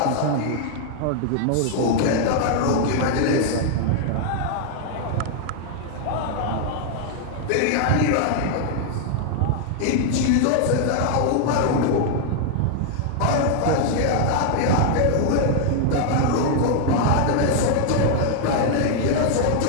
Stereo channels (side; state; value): both; different; correlation 0.00